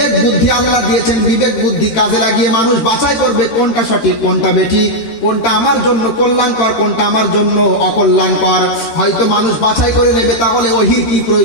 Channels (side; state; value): right; late; 13 ms